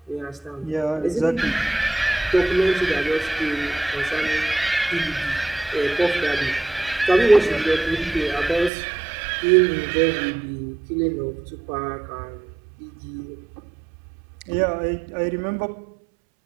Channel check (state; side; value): drops out; left; at 8.7 s